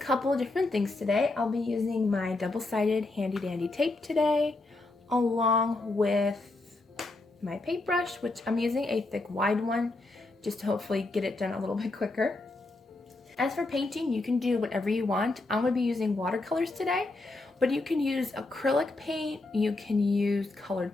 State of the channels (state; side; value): quieter; right; 3.1 dB